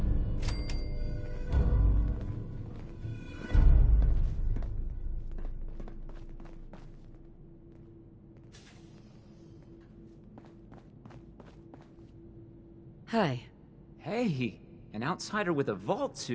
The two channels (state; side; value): identical; both; correlation 1.00